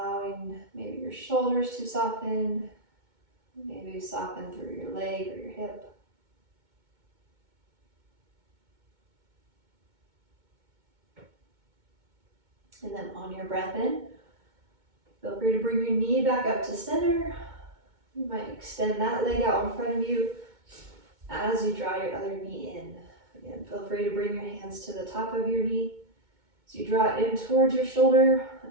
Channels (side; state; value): left; late; 2.2 ms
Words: maybe your shoulders to soften, maybe soften through your leg or your hip. And then on your breath in, feel free to bring your knee back up to center. You might extend that leg out in front of you as you draw your other knee in. Again, feel free to bring your hands to the top of your knee. So you draw it in towards your shoulder